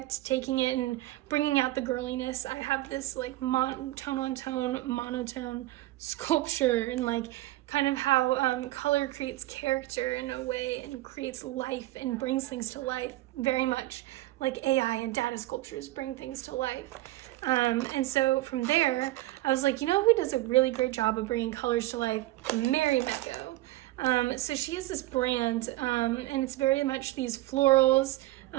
taking it and bringing out the girliness, I have this like tone on tone, monotone sculpture, and like kind of how color creates character in a way and creates life and brings things to life, very much like AI and data sculptures bring things to life. And so from there, I was like, you know who does a really great job of bringing colors to life? Mary Mecco. So she has this brand, and it's very much these florals,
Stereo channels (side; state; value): left; quieter; 17.2 dB